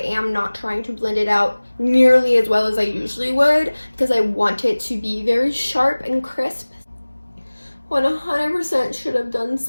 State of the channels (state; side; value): inverted; both; correlation -1.00